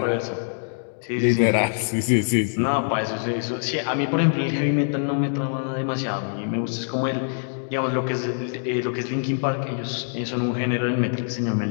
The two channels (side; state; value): right; silent; digital silence